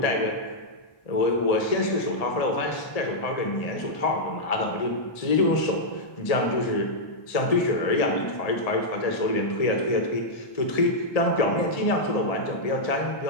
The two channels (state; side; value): late; right; 1.7 ms